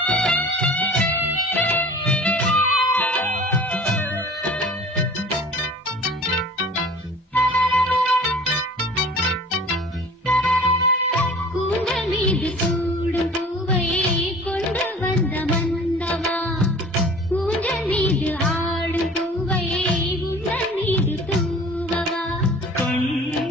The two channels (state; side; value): normal; both; correlation 0.45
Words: கூந்தல் மீது சூடும் பூவை கொண்டு வந்த மன்னவா. ஊஞ்சல் மீது ஆடும் பூவை உந்தன் மீது தூவவா. கண்